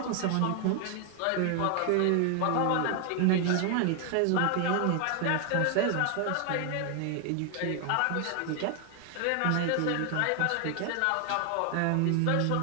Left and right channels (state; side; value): different; both; correlation 0.00